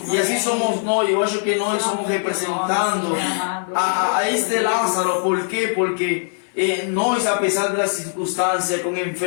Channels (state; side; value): silent; right; digital silence